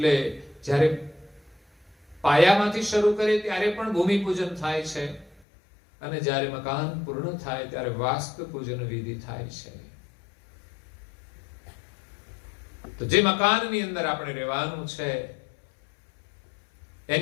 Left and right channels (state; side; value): drops out; right; at 5.4 s